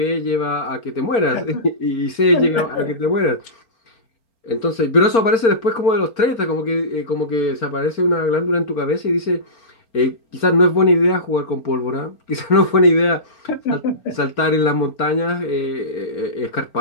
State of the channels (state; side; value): late; right; 4.4 ms